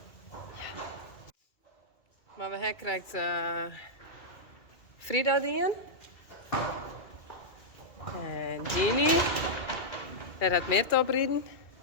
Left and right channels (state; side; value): late; right; 2.4 ms